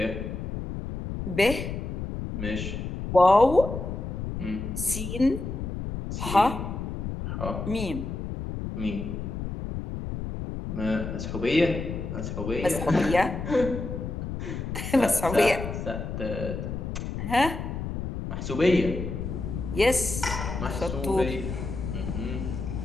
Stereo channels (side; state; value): left; noise; rumble, 5 dB below the sound